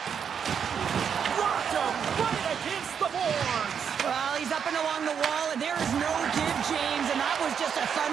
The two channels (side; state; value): left; quieter; 7.4 dB